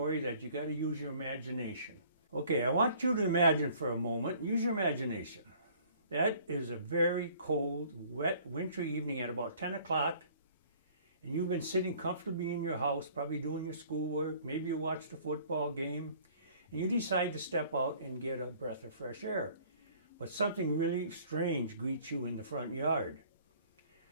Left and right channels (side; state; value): both; inverted; correlation -0.55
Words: that you got to use your imagination. Okay, I want you to imagine for a moment, use your imagination. That is a very cold, wet, wintry evening at about 10 o'clock, and you've been sitting comfortably in your house, probably doing your schoolwork, maybe you watched a football game, and you decide to step out and get a breath of fresh air. But something really strange greets you in the front yard.